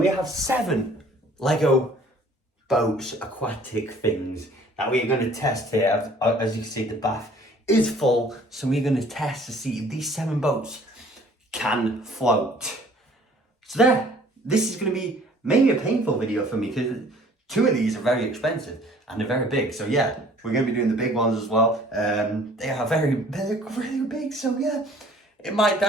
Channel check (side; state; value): both; normal; correlation 0.54